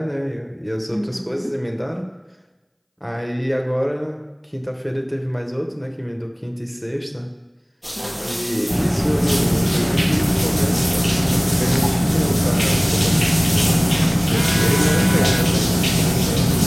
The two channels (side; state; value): both; identical; correlation 1.00